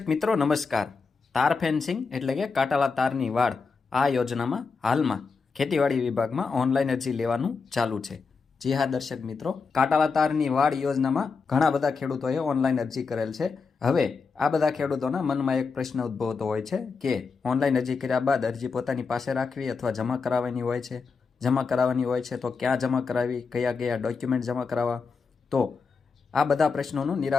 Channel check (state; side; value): quieter; right; 4.9 dB